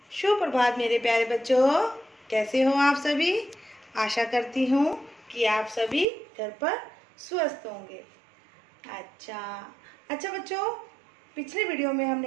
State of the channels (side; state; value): left; drops out; at 6.1 s